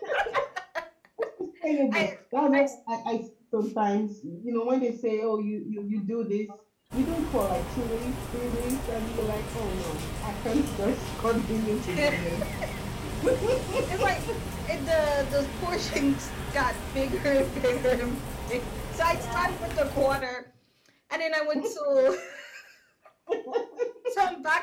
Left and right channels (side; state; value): both; identical; correlation 1.00